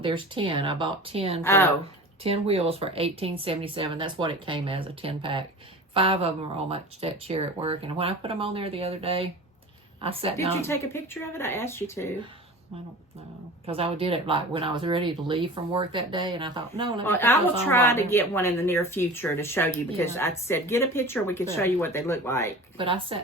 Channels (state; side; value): normal; both; correlation 0.37